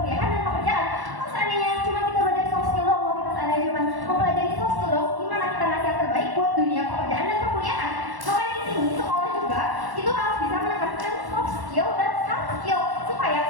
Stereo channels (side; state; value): left; late; 1.1 ms